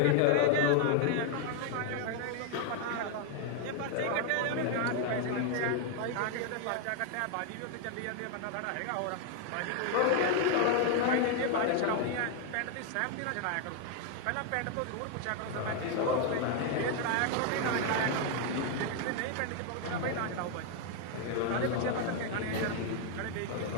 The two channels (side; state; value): both; different; correlation 0.00